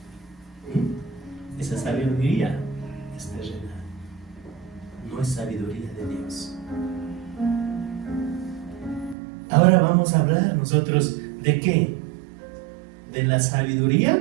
Esa sabiduría es terrenal, no es sabiduría de Dios. Ahora vamos a hablar nosotros ¿de qué? De la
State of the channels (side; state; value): left; drops out; at 9.2 s